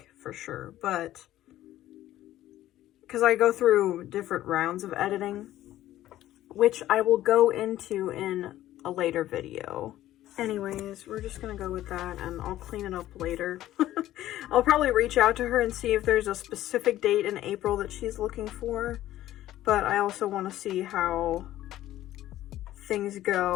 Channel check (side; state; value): right; quieter; 13.9 dB